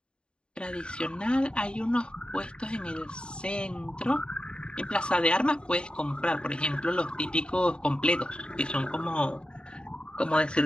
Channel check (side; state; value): right; late; 0.052 ms